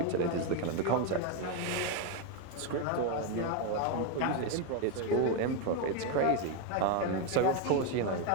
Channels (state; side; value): different; both; correlation 0.02